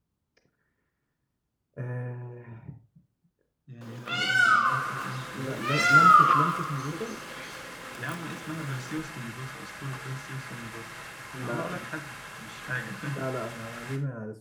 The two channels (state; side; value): identical; both; correlation 1.00